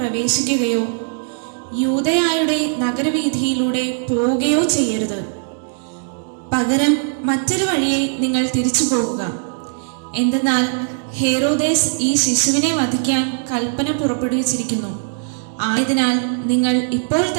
യൂദയായുടെ നഗരവീഥിയിലൂടെ പോവുകയോ ചെയ്യരുത്. പകരം മറ്റൊരു വഴിയെ നിങ്ങൾ തിരിച്ചു പോകുക. എന്തെന്നാൽ ഹേറോദേസ് ഈ ശിശുവിനെ വധിക്കാൻ കൽപ്പന പുറപ്പെടുവിച്ചിരിക്കുന്നു. ആയതിനാൽ നിങ്ങൾ ഇപ്പോൾ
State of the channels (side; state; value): left; silent; digital silence